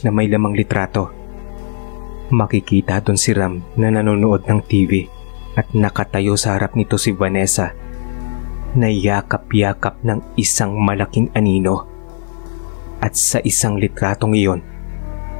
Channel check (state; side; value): silent; right; 55 dB below the other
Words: Makikita doon si Ram na nanonood ng TV at nakatayo sa harap nito si Vanessa na yakap-yakap ng isang malaking anino. At sa isang litratong iyon,